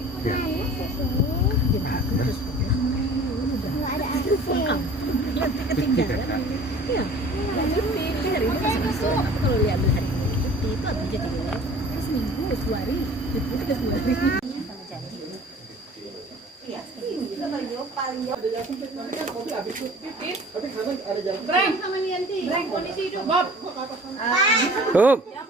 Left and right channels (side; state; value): both; normal; correlation 0.46